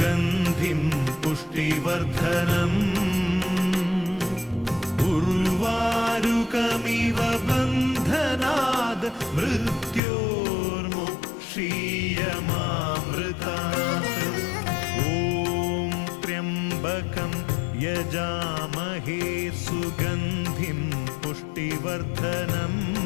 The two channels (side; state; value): right; drops out; at 10.0 s